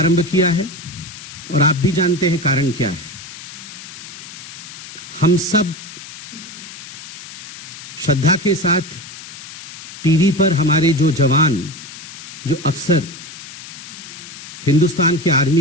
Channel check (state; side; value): noise; left; hiss, 14 dB below the sound